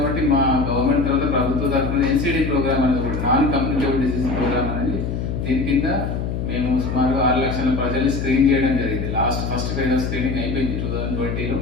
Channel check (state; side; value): noise; left; hum, 3 dB below the sound